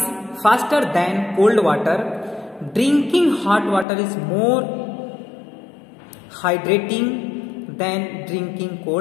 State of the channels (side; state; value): right; drops out; at 3.9 s